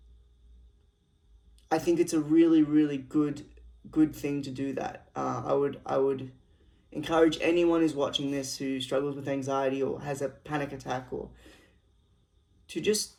I think it's a really, really good thing to do that. I would encourage anyone who's watching this who struggles with anxiety or has a panic attack or to just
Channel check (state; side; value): identical; both; correlation 1.00